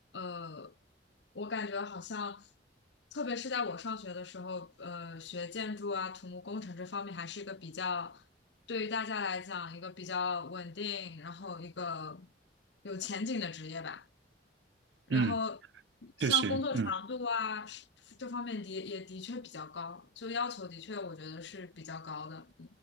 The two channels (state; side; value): normal; both; correlation -0.03